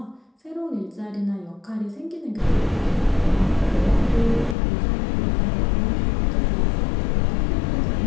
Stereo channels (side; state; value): right; drops out; at 4.5 s